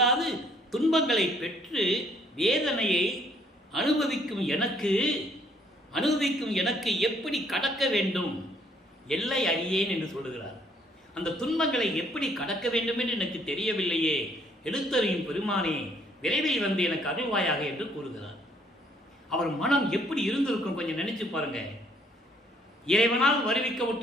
துன்பங்களை பெற்று வேதனையை அனுபவிக்கும் எனக்கு எப்படி கடக்க வேண்டும் எல்லை அறியேன் என்று சொல்லுகிறார். அந்த துன்பங்களை எப்படி கடக்க வேண்டும் என்று எனக்கு தெரியவில்லையே, எழுத்தறியும் பெருமானே விரைவில் வந்து எனக்கு அருள்வாயாக என்று கூறுகிறார். அவர் மனம் எப்படி இருந்திருக்கும் கொஞ்சம் நினைச்சு பாருங்க. இறைவனால்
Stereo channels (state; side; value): normal; both; correlation 0.65